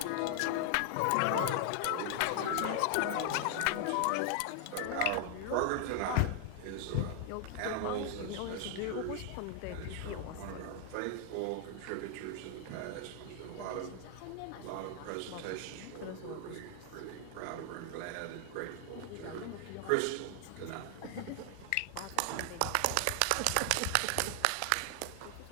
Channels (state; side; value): different; both; correlation 0.00